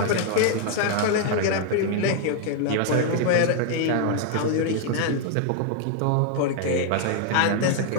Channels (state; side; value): different; both; correlation 0.00